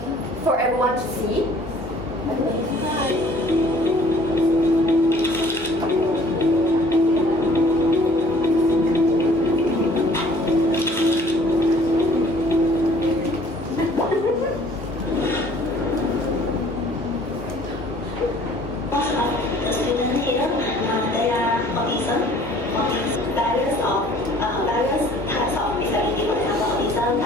for everyone to see. The students here, they are autism, various types of disability, for example, autism,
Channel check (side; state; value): both; normal; correlation 0.55